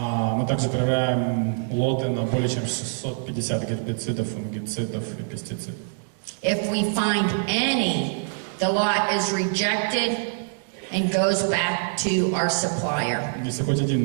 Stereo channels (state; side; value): silent; left; digital silence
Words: также проверяем лоты на более чем 650 гербицидов, фунгицидов и пестицидов. If we find any, the lot is rejected and goes back to our supplier. Если хоть один